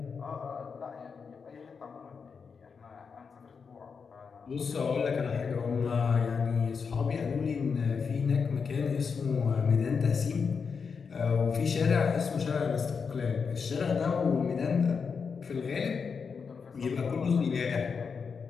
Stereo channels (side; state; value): right; quieter; 5.7 dB